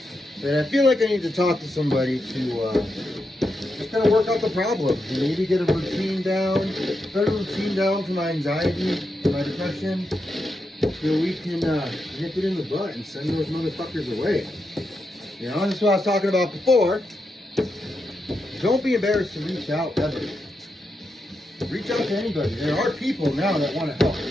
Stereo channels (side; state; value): both; normal; correlation 0.85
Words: But I feel like I need to talk to somebody to just kind of work out the problems and maybe get a routine down, put a routine down to my anxiety, to my depression, so we can nip it in the butt and send those motherfuckers away. You know, that's what I was talking about before. Don't be embarrassed to reach out ever. Reach out to anybody. There are people now that want to help.